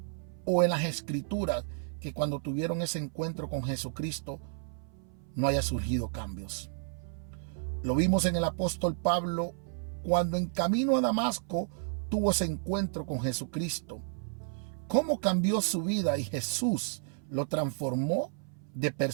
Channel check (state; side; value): silent; left; 57 dB below the other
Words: o en las escrituras que cuando tuvieron ese encuentro con Jesucristo no haya surgido cambios. Lo vimos en el apóstol Pablo cuando en camino a Damasco tuvo ese encuentro con Jesucristo. Cómo cambió su vida y Jesús lo transformó de